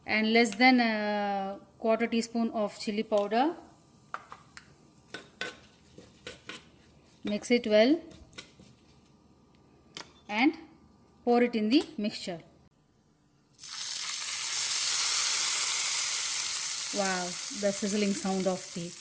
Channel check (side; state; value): both; identical; correlation 1.00